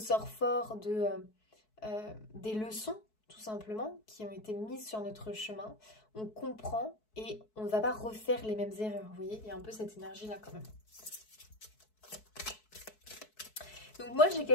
fort des leçons, tout simplement, qui ont été mises sur notre chemin. On comprend et on ne va pas refaire les mêmes erreurs. Vous voyez, il y a un peu cette énergie-là quand même. Donc moi, j'ai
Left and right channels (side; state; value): right; late; 4.6 ms